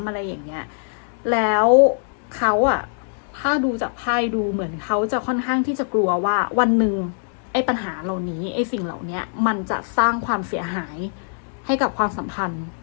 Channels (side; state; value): right; silent; digital silence